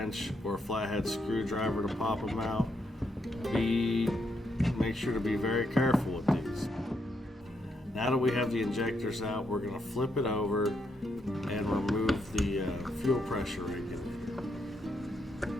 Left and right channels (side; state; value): both; normal; correlation 0.79